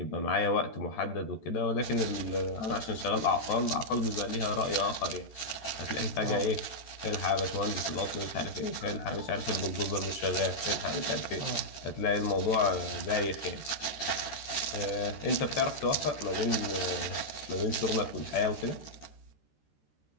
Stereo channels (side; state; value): right; late; 13 ms